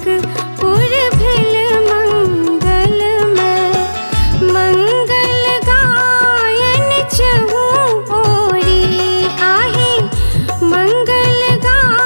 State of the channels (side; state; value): both; inverted; correlation -1.00